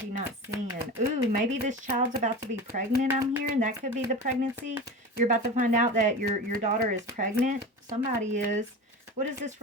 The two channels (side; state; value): both; normal; correlation 0.30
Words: not seeing? Ooh, maybe this child's about to be pregnant, I'm hearing. That could be the pregnancy. You're about to find out that your daughter is pregnant. Somebody is. What is this